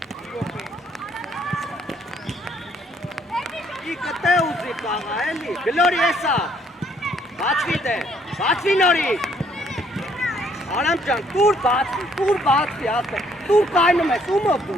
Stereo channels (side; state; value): both; normal; correlation 0.66